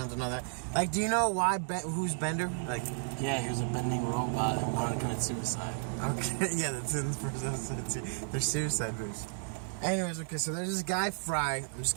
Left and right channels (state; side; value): silent; left; 56 dB below the other